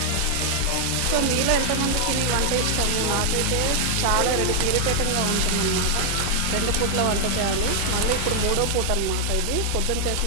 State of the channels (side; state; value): both; different; correlation 0.00